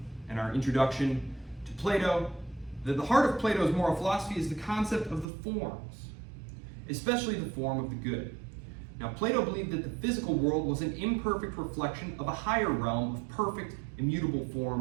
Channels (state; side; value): drops out; left; at 5.2 s